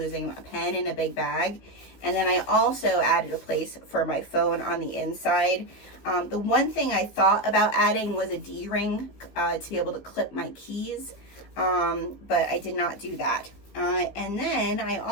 a pen in a big bag. And then I also added a place for my phone on the inside. The one thing I thought about adding was a D-ring to be able to clip my keys, but I did not do that. And then I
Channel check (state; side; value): late; right; 16 ms